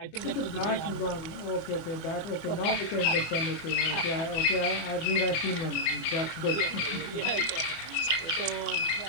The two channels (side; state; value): right; late; 24 ms